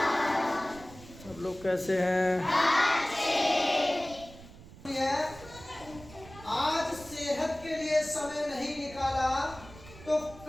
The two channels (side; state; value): right; noise; rumble, 18 dB below the sound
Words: सब लोग कैसे हैं? आज सेहत के लिए समय नहीं निकाला तो